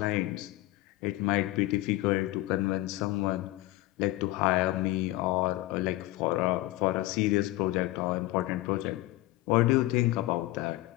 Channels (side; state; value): right; quieter; 18.1 dB